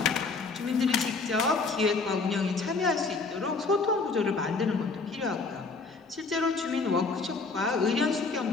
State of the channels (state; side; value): quieter; right; 4.1 dB